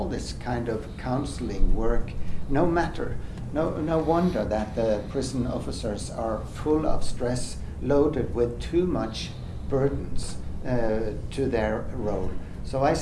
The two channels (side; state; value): both; identical; correlation 1.00